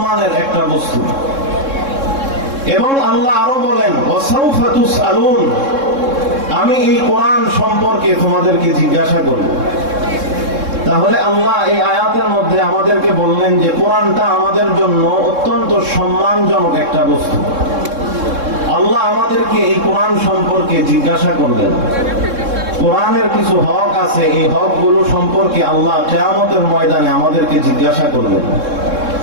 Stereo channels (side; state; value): left; late; 3.7 ms